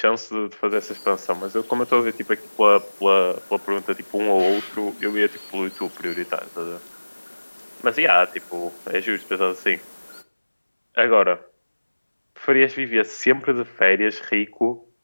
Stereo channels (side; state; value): both; inverted; correlation -1.00